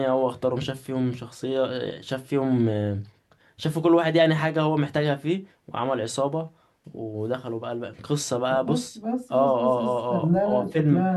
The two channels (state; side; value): identical; both; correlation 1.00